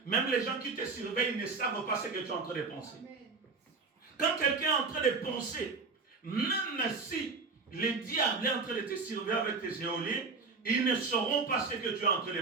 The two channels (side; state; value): left; quieter; 4.4 dB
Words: Même les gens qui te surveillent ne savent pas ce que tu es en train de penser. Quand quelqu'un est en train de penser, même si les diables est en train de te surveiller avec tes éoliens, ils ne sauront pas ce que tu es en train de